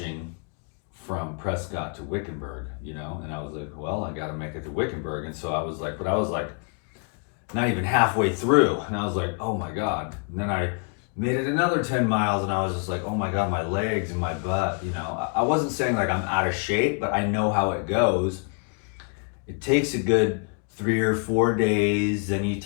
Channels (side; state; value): right; quieter; 38.7 dB